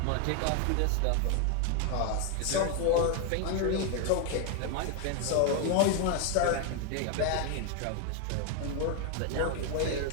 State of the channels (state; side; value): different; both; correlation 0.01